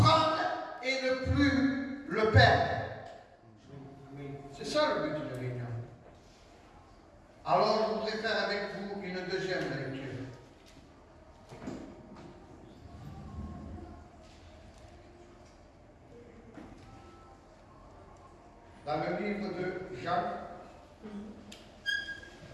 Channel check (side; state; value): both; identical; correlation 1.00